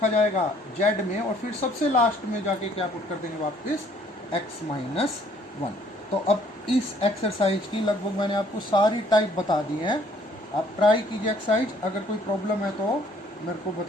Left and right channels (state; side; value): normal; both; correlation 0.61